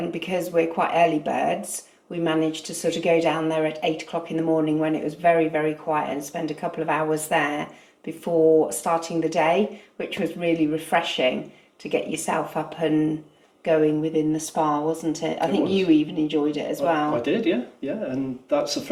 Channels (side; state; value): both; identical; correlation 1.00